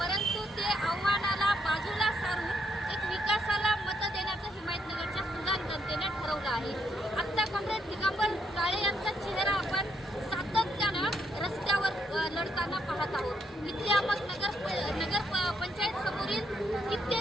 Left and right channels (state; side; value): normal; both; correlation 0.75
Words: परंतु ते आव्हानाला बाजूला सारून एक विकासाला मत देण्याचं हिमायतनगरच्या सुजाण जनतेने ठरवलं आहे. आता कॉम्रेड दिगंबर काळे यांचा चेहरा आपण सातत्यानं रस्त्यावर लढताना पाहत आहोत. इथे आपण नगर पंचायत समोरील